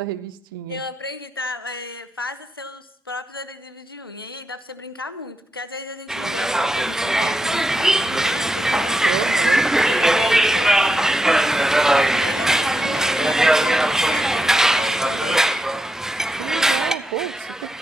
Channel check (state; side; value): normal; both; correlation 0.85